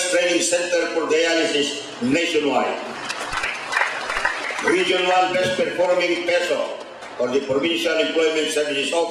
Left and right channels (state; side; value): identical; both; correlation 1.00